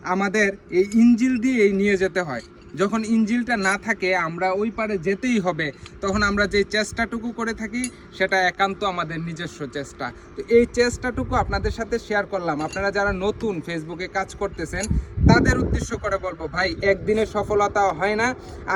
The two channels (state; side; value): identical; both; correlation 1.00